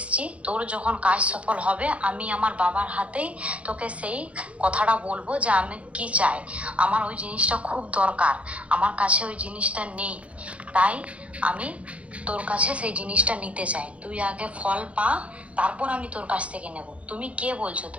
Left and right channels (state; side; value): late; left; 0.063 ms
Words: তোর যখন কাজ সফল হবে, আমি আমার বাবার হাতেই তোকে সেই কথাটা বলবো যে আমি কি চাই। আমার ওই জিনিসটা খুব দরকার, আমার কাছে ওই জিনিসটা নেই, তাই আমি তোর কাছে সেই জিনিসটা নিতে চাই। তুই আগে ফল পা, তারপর আমি তোর কাছ থেকে নেব। তুমি কে বলছো,